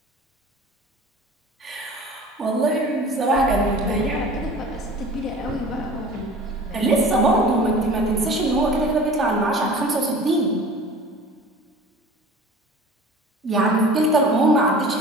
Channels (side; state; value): both; normal; correlation 0.42